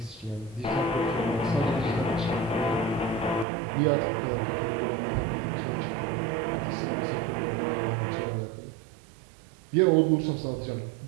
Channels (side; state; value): left; drops out; at 3.5 s